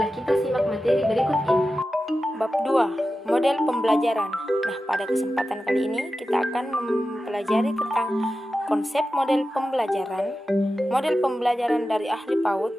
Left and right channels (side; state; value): both; normal; correlation 0.93